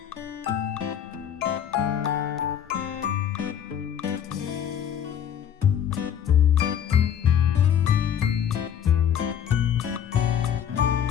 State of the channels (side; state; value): right; quieter; 9.2 dB